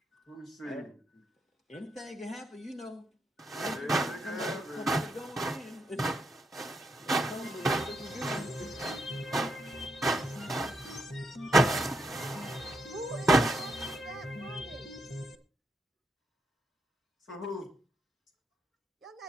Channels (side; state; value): both; normal; correlation 0.80